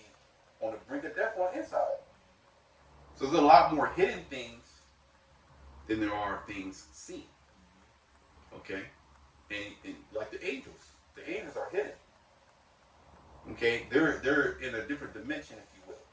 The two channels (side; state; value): both; identical; correlation 1.00